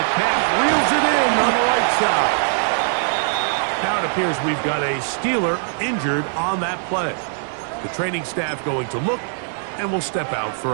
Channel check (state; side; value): silent; left; digital silence